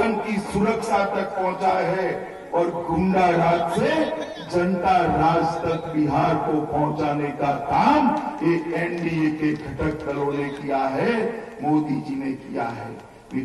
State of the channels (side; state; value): both; identical; correlation 1.00